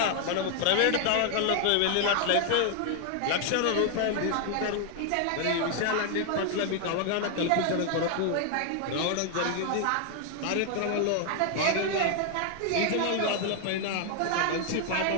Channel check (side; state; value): both; different; correlation 0.00